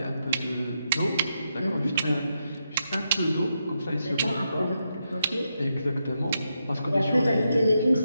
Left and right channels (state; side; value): inverted; both; correlation -0.84